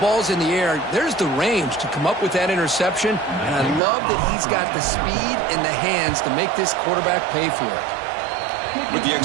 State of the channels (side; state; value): left; drops out; at 3.8 s